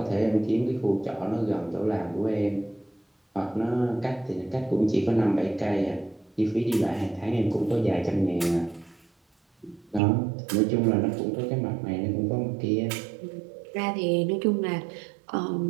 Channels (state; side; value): drops out; left; at 10.0 s